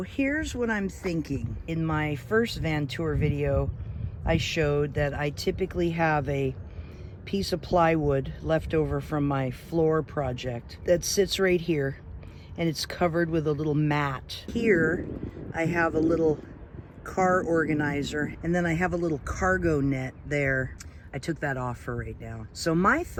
here's what I'm thinking. In my first van tour video, I showed that I typically have a piece of plywood left over from my floor project that sits right here, and it's covered with a little mat. Here I have a little car organizer, and then I have a little cargo net there. I took that off for right now. So my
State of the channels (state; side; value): identical; both; correlation 1.00